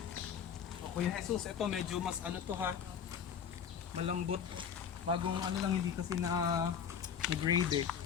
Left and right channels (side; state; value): right; quieter; 7.7 dB